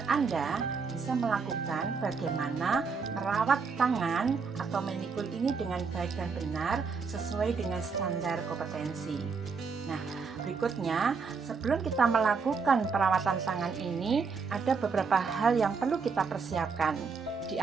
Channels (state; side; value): quieter; left; 5.1 dB